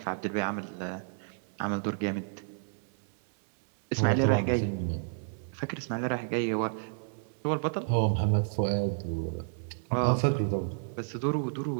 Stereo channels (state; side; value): silent; left; 57 dB below the other